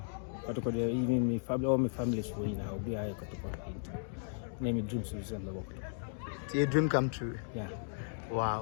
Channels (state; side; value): silent; right; digital silence